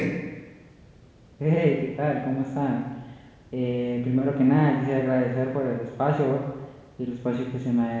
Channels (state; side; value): identical; both; correlation 1.00